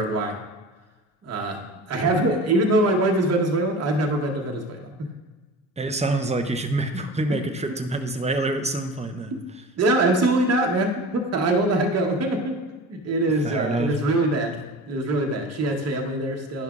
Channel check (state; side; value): normal; both; correlation 0.36